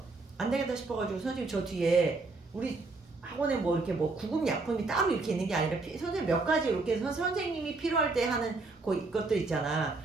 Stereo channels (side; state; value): left; quieter; 3.6 dB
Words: 안 되겠다 싶어가지고 선생님 저 뒤에 우리 학원에 뭐 이렇게 뭐 구급 약품이 따로 이렇게 있는 게 아니라 선생님 몇 가지 이렇게 선생님이 필요할 때 하는 것도 있잖아.